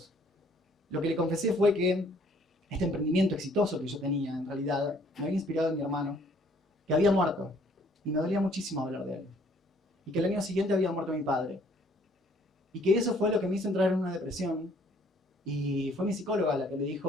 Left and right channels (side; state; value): both; normal; correlation 0.61